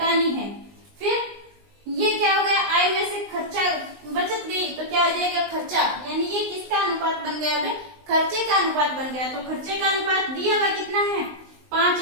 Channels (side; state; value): left; late; 19 ms